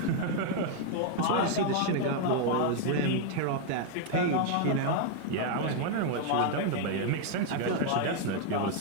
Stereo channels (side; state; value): both; different; correlation 0.00